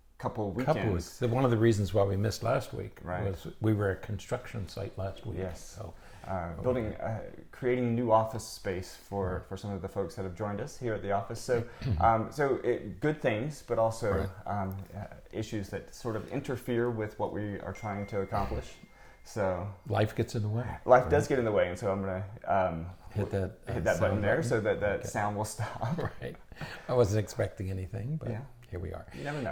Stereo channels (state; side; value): identical; both; correlation 1.00